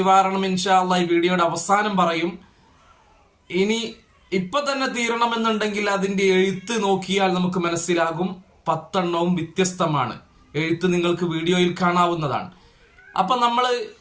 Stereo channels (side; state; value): both; identical; correlation 1.00